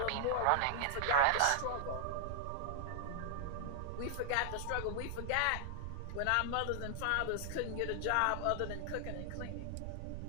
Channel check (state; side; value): different; both; correlation -0.01